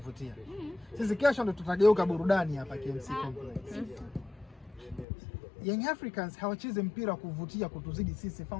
Sisi kesho ndo tutageuka burudani hapa KMC Complex. Young Africans hawachezi mpira wa kuvutia kutuzidi sisi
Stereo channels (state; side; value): drops out; right; at 5.1 s